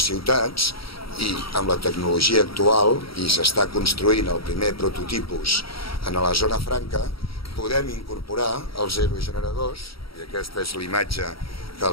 ciutats i amb la tecnologia actual, i s'està construint el primer prototipus en la zona franca, podem incorporar els aerogeneradors, i aquesta és l'imatge que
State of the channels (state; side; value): late; right; 0.75 ms